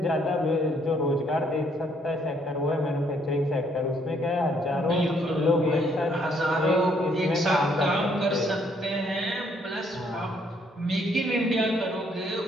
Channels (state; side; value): normal; both; correlation 0.68